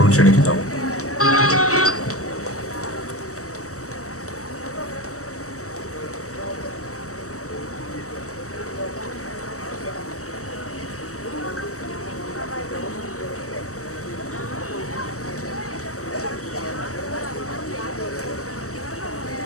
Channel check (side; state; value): right; late; 0.65 ms